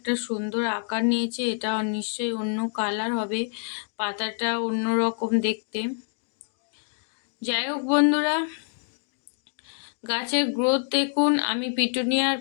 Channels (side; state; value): right; silent; 61 dB below the other